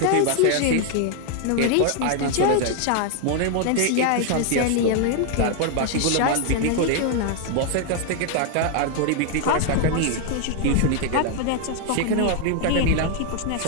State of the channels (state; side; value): different; both; correlation 0.00